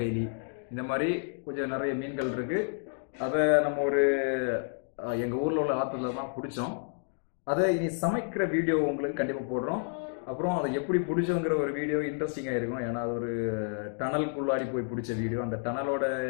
இந்த மாதிரி கொஞ்சம் நிறைய மீன்கள் இருக்கு. அதை நம்ம எங்கள் ஊரில் உள்ள ஆற்றுல தான் பிடிச்சோம். அதை இனி சமைக்கிற வீடியோ உங்களுக்கு கண்டிப்பாக போடுறோம். அப்புறம் அதை எப்படி பிடிச்சோங்கிற ஒரு வீடியோ இன்ட்ரெஸ்டிங்காக இருக்கும். ஏன்னா அது ஒரு டனலுக்குள்ளாடி போய் பிடிச்ச வீடியோ. அந்த டனலோட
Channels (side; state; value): right; silent; 58 dB below the other